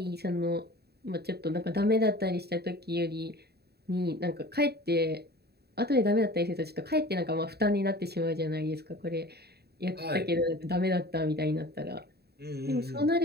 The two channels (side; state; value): left; late; 0.47 ms